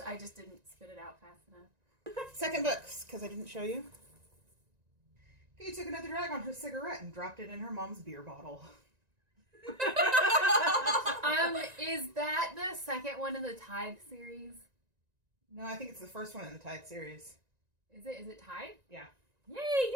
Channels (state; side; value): late; left; 1.9 ms